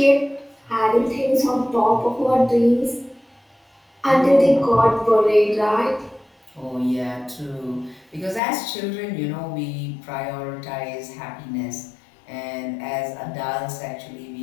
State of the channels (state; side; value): drops out; right; at 8.4 s